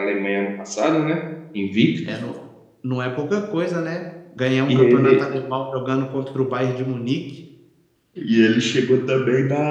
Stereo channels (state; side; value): identical; both; correlation 1.00